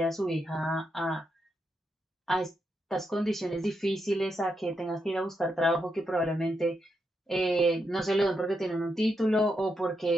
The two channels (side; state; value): both; normal; correlation 0.83